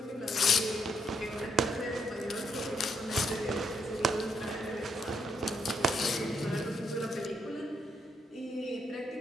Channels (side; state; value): both; normal; correlation 0.75